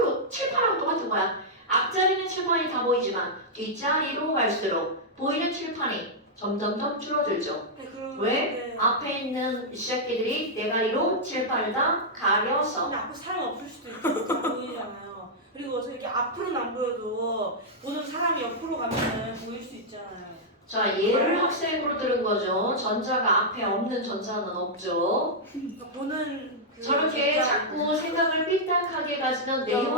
칠판하고 똑같은 거야. 앞자리는 칠판이 다 보이지만 뒷자리로 갈수록 보이는 칠판이 점점점 줄어들죠. 네, 그럼 왜? 네. 앞에 있는 새끼들이 대가리로 칠판을 다 가려서. 근데 앞에 사람 없을 수도 있고 잘 보이잖아요. 그리고 이렇게 앞으로는 안 보여도 보는 사람이 옆으로 가면 보일 수 있잖아요. 자, 얘를 학생으로 들은 거죠. 전자가 앞에 없는 전자는 없죠. 그러니까 보는 그 저렇게 진짜- 자꾸 생각을 삐딱하게 가지면 내용이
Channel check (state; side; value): normal; both; correlation -0.07